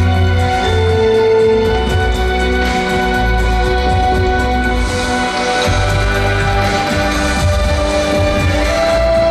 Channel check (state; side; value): identical; both; correlation 1.00